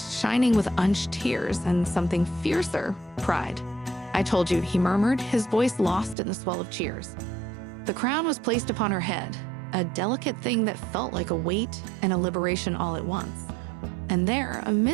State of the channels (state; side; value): drops out; left; at 6.2 s